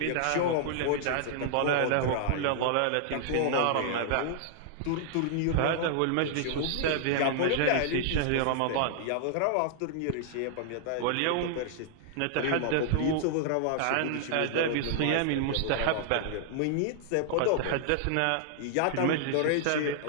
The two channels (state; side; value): different; both; correlation -0.01